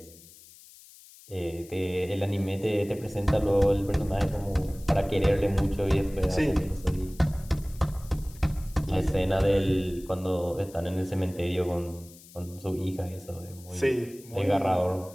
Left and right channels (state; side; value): noise; left; hiss, 22 dB below the sound